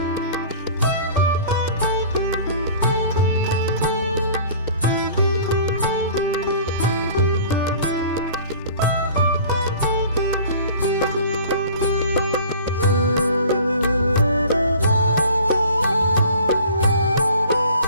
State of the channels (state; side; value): inverted; both; correlation -0.45